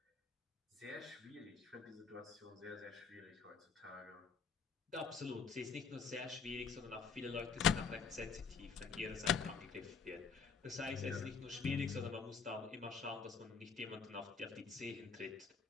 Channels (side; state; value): right; quieter; 5.7 dB